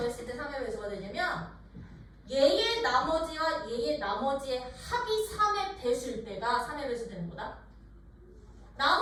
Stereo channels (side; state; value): both; identical; correlation 1.00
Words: 때 3의 배수가 되냐면 얘의 나머지와 얘의 나머지의 합이 3의 배수일 때가 3의 배수 되는 거다.